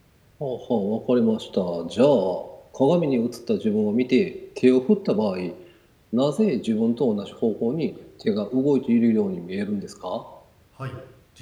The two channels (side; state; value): both; identical; correlation 1.00